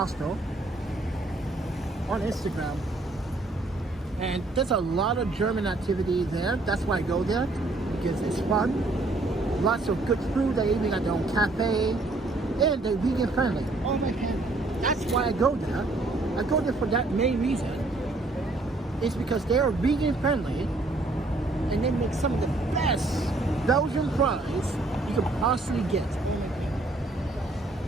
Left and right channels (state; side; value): quieter; left; 3.0 dB